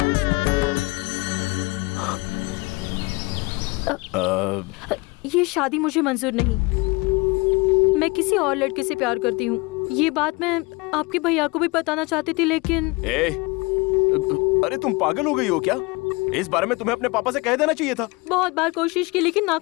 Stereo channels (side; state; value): right; quieter; 25.4 dB